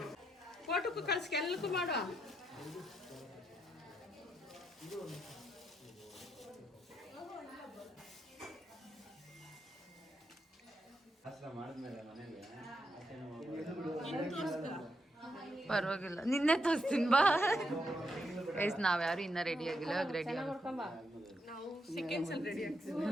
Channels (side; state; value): both; normal; correlation 0.81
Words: ಫೋಟೋಕ್ಕೂ ಕಳ್ಸಿ ಎಲ್ಲಕ್ಕೂ ಮಾಡೋ. ಪರವಾಗಿಲ್ಲ, ನಿನ್ನೆ ತೋರಿಸ್ತೀನಿ ಬಾ. ಗೈಸ್ ನಾವ್ಯಾರು ಇನ್ನ ರೆಡಿ ಆಗಿಲ್ಲ, ಇವಾಗ ರೆಡಿ